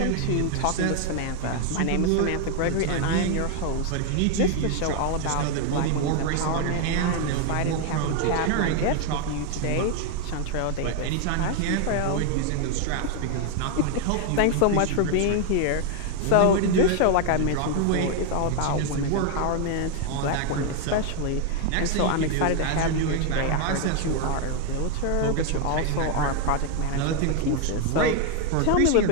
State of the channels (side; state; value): both; different; correlation 0.01